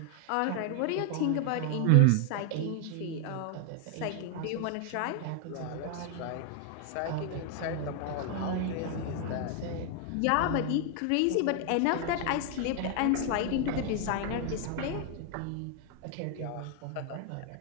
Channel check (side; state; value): both; different; correlation 0.00